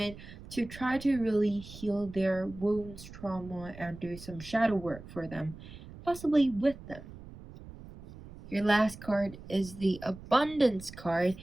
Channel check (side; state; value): right; noise; rumble, 16 dB below the sound